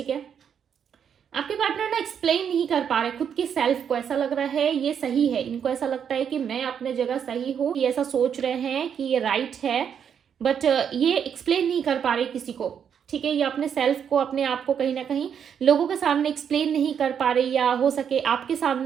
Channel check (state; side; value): quieter; left; 7.9 dB